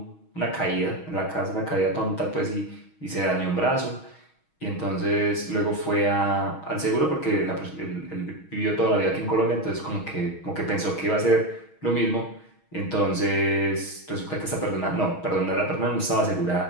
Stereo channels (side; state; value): right; late; 6.3 ms